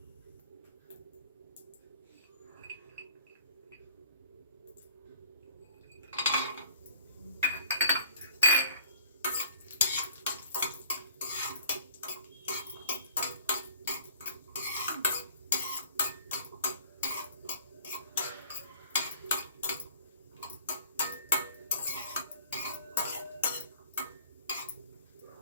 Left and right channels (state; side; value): inverted; both; correlation -0.53